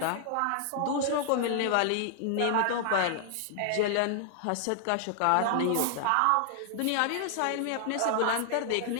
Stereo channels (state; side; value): different; both; correlation 0.00